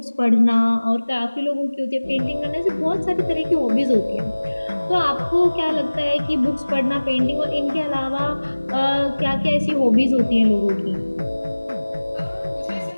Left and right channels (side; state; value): both; inverted; correlation -1.00